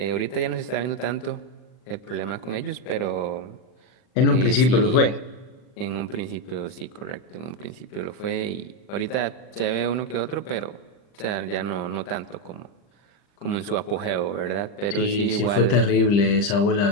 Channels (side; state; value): right; late; 39 ms